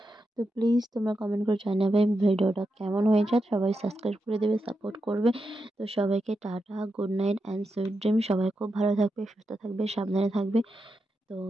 তো প্লিজ তোমরা কমেন্ট করে জানাবে ভিডিওটা কেমন হয়েছে, সবাই সাবস্ক্রাইব করে দেবে, সাপোর্ট করবে। তো সবাইকে tata, good night and sweet dream. সবাই খুব ভালো থাকবে, সুস্থ থাকবে, সাবধানে থাকবে। তো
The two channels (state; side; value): normal; both; correlation 0.87